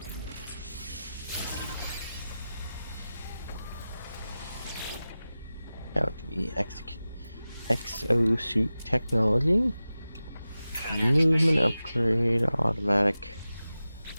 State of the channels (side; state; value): both; inverted; correlation -0.95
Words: Out to be exosuit technology. Movement upgrade, automatic